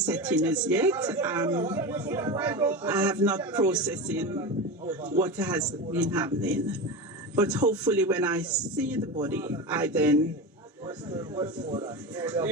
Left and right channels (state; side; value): normal; both; correlation 0.23